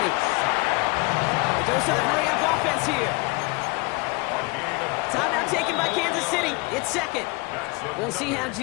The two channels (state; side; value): quieter; right; 26.7 dB